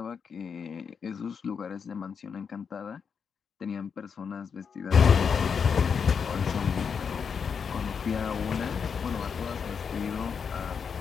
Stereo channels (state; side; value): quieter; right; 6.4 dB